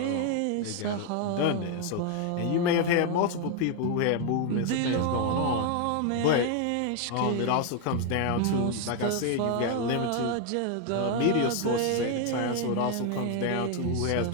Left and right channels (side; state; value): both; different; correlation 0.01